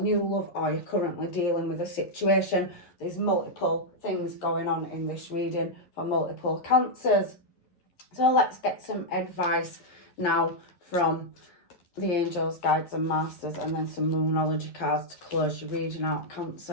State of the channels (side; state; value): right; late; 11 ms